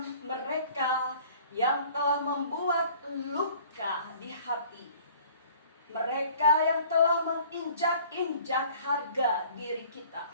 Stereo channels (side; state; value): both; inverted; correlation -0.52